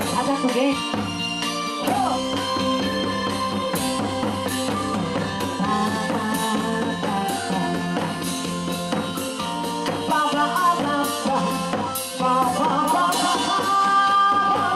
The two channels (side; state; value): both; identical; correlation 1.00